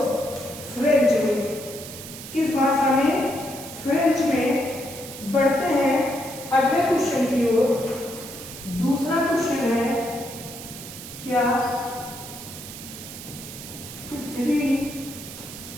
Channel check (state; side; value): noise; right; hiss, 12 dB below the sound